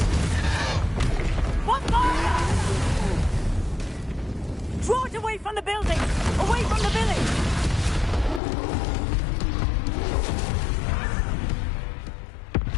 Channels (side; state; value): right; drops out; at 8.4 s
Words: Draw it away from the building! Away from the village!